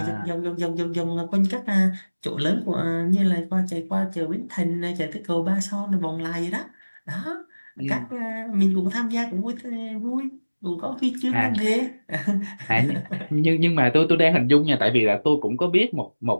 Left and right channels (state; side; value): inverted; both; correlation -1.00